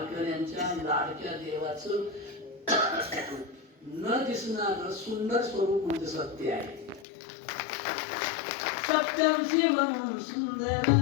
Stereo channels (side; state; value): right; drops out; at 7.1 s